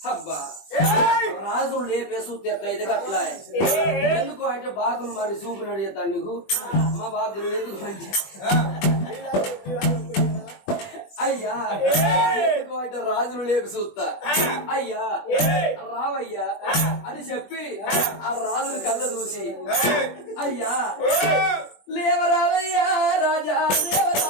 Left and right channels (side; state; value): right; late; 20 ms